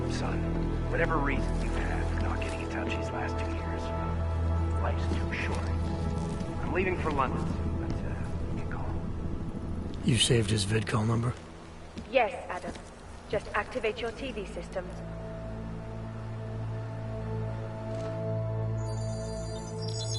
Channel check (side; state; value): both; identical; correlation 1.00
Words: son, whatever reason you've had for not getting in touch these last 2 years, life's too short. I'm leaving for London, but you can call. You saved his vidcall number? Yes, Adam. Just activate your TV system.